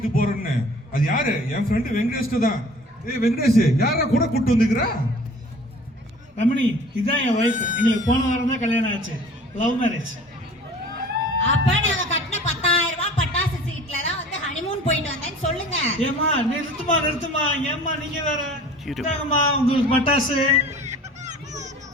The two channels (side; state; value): both; normal; correlation 0.46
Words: போறேன்னு, அது யாரு? என் ஃப்ரெண்டு வெங்கடேஷ் தான். ஏய் வெங்கடேஷ், யாரா கூட கூட்டு வந்துக்கிறா? ரமணி, இதான் என் வைஃப். எங்களுக்கு போன வாரம் தான் கல்யாணம் ஆச்சு. Love marriage. அப்ப நாங்க கட்டின 10,000 ரூபாய் பட்டாசு சீட்ல தான் வந்து ஹனிமூன் போயிட்டு வந்தேன்னு சொல்லுங்க. ஏமா நிறுத்துமா. ஏமா நீங்க வேற. இதாங்கம்மா உங்களுக்கு பட்டாசு.